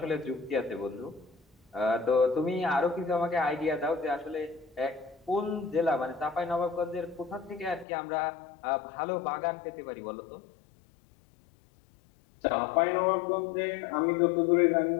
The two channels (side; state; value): right; drops out; at 7.9 s